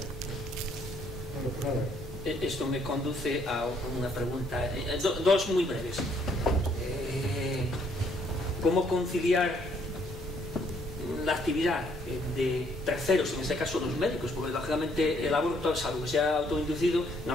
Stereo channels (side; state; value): both; normal; correlation 0.67